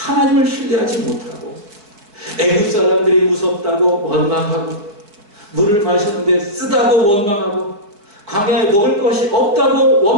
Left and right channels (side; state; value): left; late; 4.7 ms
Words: 신뢰하지 못하고 애굽 사람들이 무섭다고 원망하고, 물을 마셨는데 쓰다고 원망하고, 광야에 먹을 것이 없다고